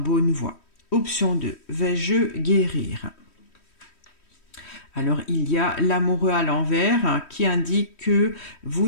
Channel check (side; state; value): right; late; 3.1 ms